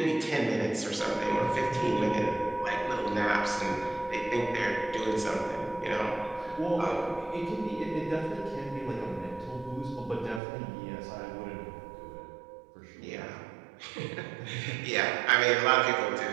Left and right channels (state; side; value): drops out; left; at 10.4 s